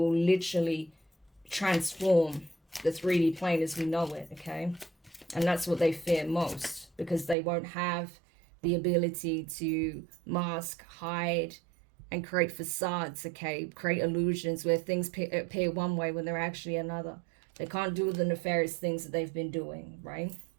literally transform the 3D plane as we know it, okay? And that's what they fear most, because they won't have the ability to mask, hide, and create facades, okay? Create illusions where things appear one way when they're actually another. They can't do the nefarious things that they've been doing, right?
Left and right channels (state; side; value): drops out; left; at 7.4 s